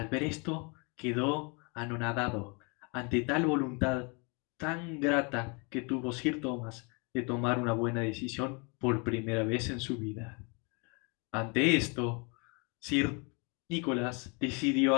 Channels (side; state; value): right; quieter; 32.7 dB